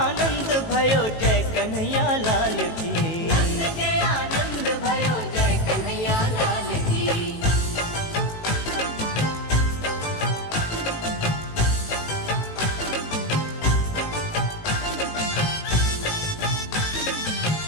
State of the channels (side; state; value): right; late; 18 ms